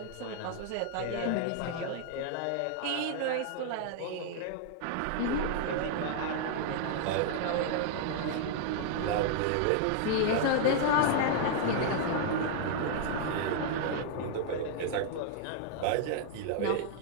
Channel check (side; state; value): both; different; correlation 0.00